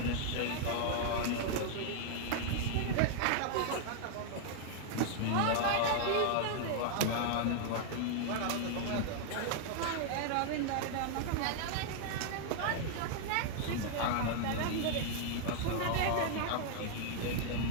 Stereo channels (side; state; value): both; different; correlation 0.00